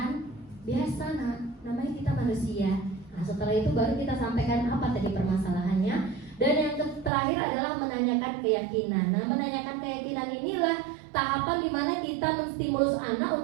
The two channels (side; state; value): left; drops out; at 7.1 s